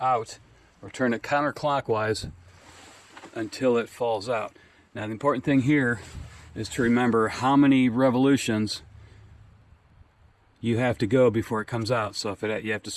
or turn it counterclockwise until it falls out. Now the important thing here is to remember how many revolutions you have to go before it comes out. So if you have to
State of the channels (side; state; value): both; identical; correlation 1.00